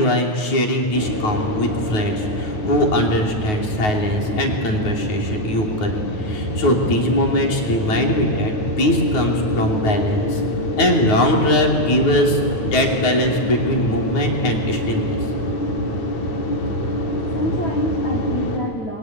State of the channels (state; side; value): late; right; 9.4 ms